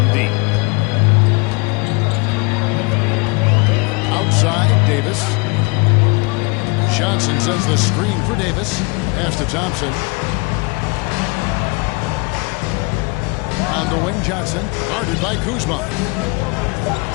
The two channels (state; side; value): quieter; right; 28.9 dB